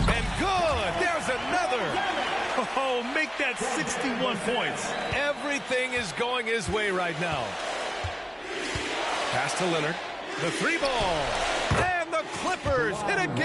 And good! There's another! Oh, make that 61 points. Everything is going his way right now. Pass to Leonard. The 3-ball. And the Clippers hit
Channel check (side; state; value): both; identical; correlation 1.00